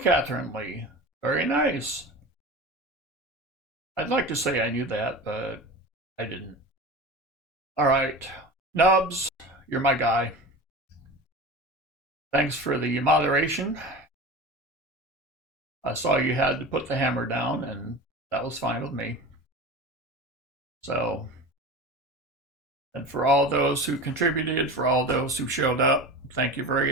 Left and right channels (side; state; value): both; normal; correlation 0.31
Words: Lee. Very nice. I'd like to say I knew that, but I didn't. All right. Nubs, you're my guy. Thanks for the moderation. I saw you had to put the hammer down, and that was fine with me. So, and for all those who contributed, for all those who showed up, thank you